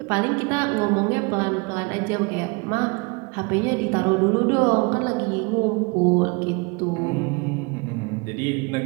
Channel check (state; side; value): quieter; left; 29.6 dB